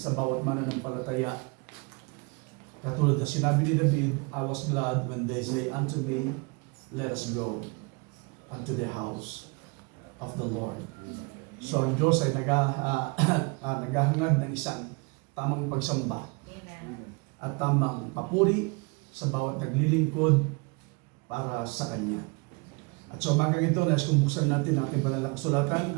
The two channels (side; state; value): left; quieter; 30.3 dB